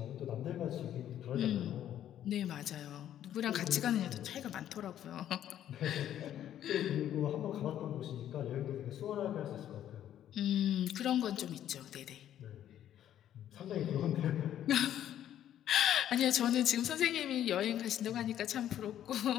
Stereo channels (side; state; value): right; quieter; 11.1 dB